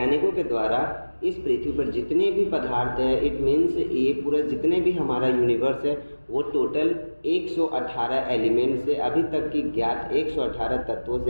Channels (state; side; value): inverted; both; correlation -1.00